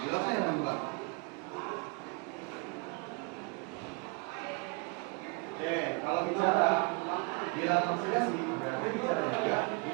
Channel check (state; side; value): quieter; left; 32.6 dB